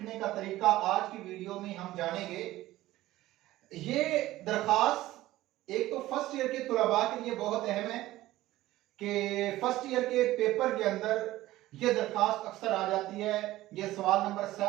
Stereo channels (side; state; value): left; quieter; 16.2 dB